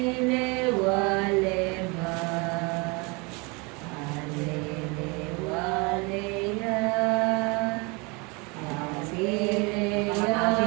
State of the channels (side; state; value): left; quieter; 28.9 dB